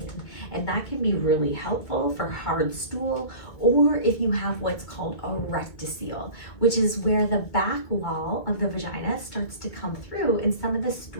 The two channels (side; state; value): right; late; 2.2 ms